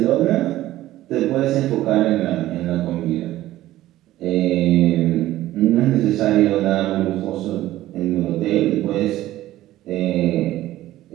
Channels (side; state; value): left; quieter; 15.1 dB